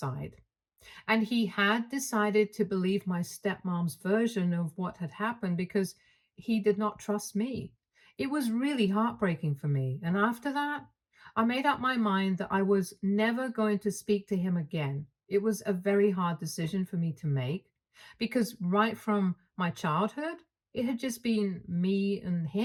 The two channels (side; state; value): both; identical; correlation 1.00